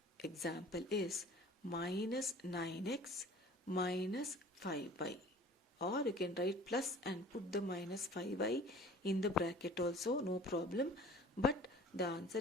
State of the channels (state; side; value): normal; both; correlation 0.47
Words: example is minus 9x minus 5y. Or you can write plus and put the minus 5y in the bracket also, no problem. But the answer